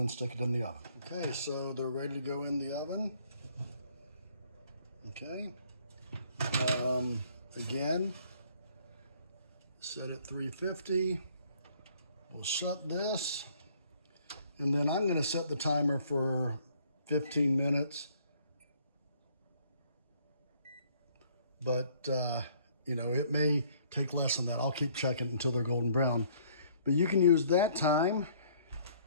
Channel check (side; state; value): both; inverted; correlation -0.61